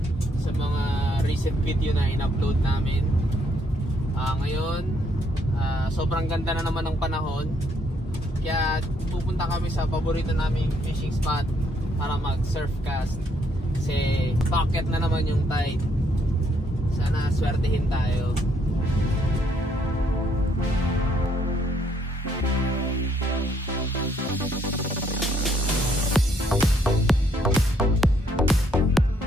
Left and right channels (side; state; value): both; normal; correlation 0.70